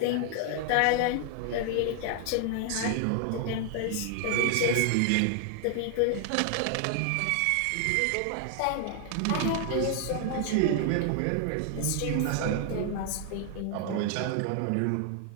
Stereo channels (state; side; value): different; both; correlation 0.00